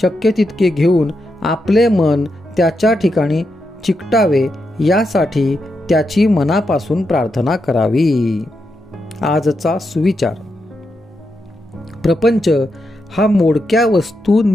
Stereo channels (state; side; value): normal; both; correlation 0.85